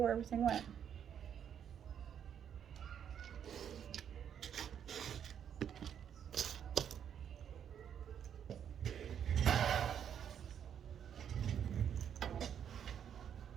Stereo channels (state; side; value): quieter; left; 8.7 dB